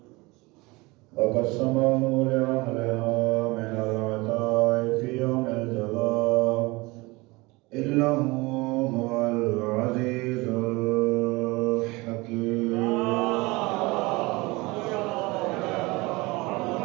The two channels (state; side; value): quieter; left; 23.4 dB